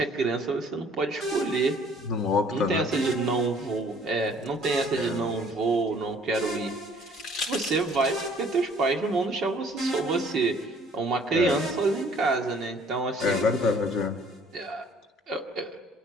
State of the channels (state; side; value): normal; both; correlation 0.57